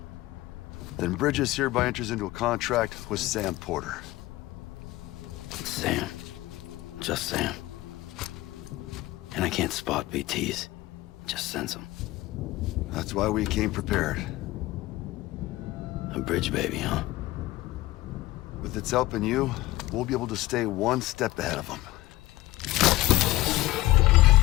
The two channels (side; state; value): right; quieter; 17.9 dB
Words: Then Bridges hereby enters into a contract with Sam Porter. Sam. Just Sam. And I can't spot BTs. Just sense them. That's why we came prepared. A bridge baby, huh? With its help and you, we'll be able to stay one step ahead of them.